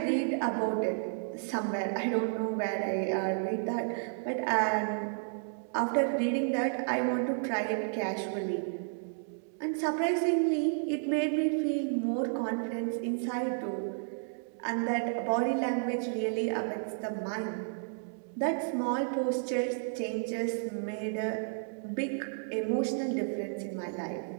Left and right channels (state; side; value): silent; left; digital silence